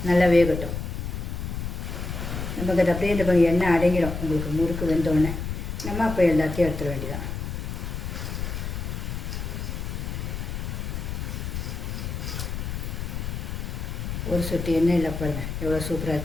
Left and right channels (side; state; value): left; noise; rumble, 4 dB below the sound